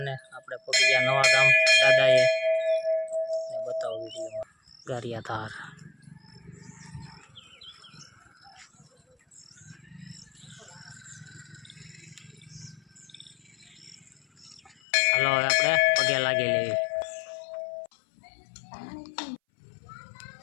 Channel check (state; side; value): drops out; right; at 14.8 s